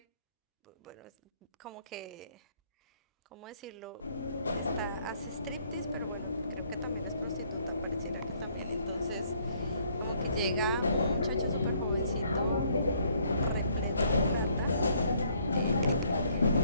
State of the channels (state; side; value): inverted; both; correlation -0.66